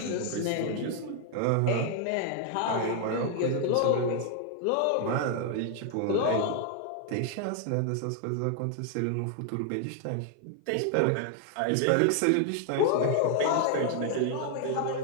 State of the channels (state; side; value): different; both; correlation 0.00